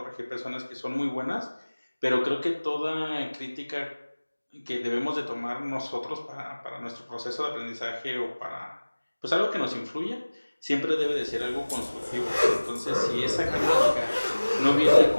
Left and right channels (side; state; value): both; inverted; correlation -1.00